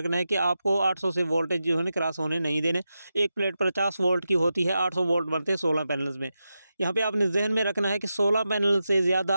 है कि आपको 800 से वोल्टेज जो है ना क्रॉस होने नहीं देने। एक प्लेट 50 वोल्ट की होती है, 800 वोल्ट बनते हैं 16 पैनल्स में। यहाँ पे आपने ज़हन में रखना है कि 16 पैनल से ज़्यादा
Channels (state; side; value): inverted; both; correlation -0.90